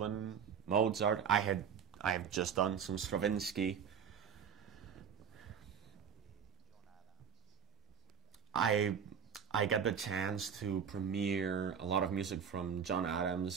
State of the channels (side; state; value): left; quieter; 7.5 dB